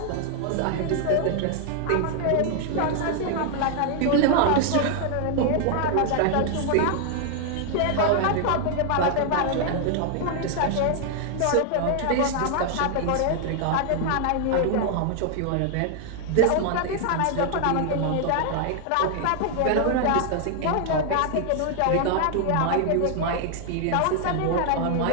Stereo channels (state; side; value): different; both; correlation 0.00